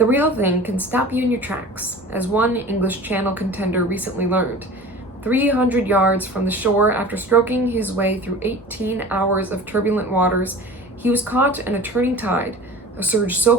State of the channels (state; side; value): normal; both; correlation 0.39